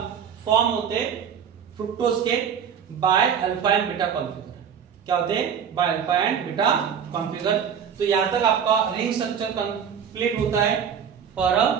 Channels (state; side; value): quieter; left; 7.7 dB